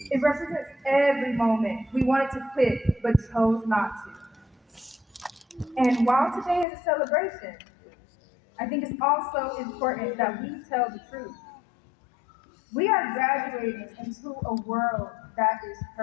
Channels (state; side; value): drops out; right; at 6.7 s